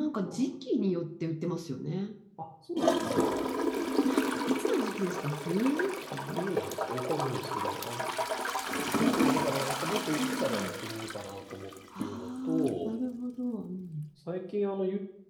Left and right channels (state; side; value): identical; both; correlation 1.00